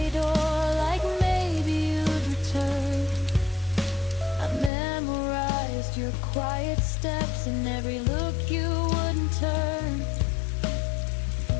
door, like maybe you'd return. I memorized your quiet steps and every look you wouldn't turn.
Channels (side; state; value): right; drops out; at 4.7 s